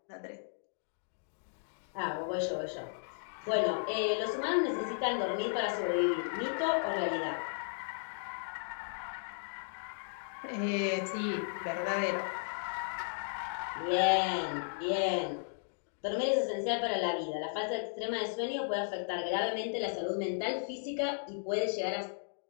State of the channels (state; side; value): silent; right; digital silence